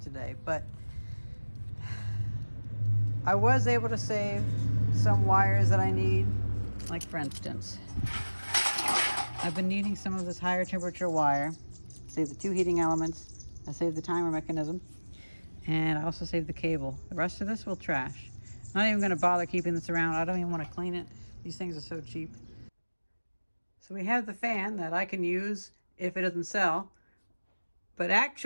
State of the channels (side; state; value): both; inverted; correlation -1.00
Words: today, but I was able to save some wires that I need. Like for instance, I've been needing some of this higher temperature wire. Save the 2 heating elements. I saved the timer mechanism. And I also saved the cable. The rest of this will trash. I'm not even gonna bother keeping this around. I don't even wanna clean it. These things are so cheap. So we have the fan that I can use if it doesn't sell. But